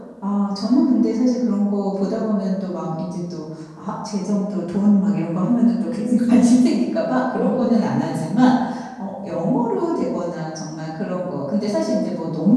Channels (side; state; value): both; identical; correlation 1.00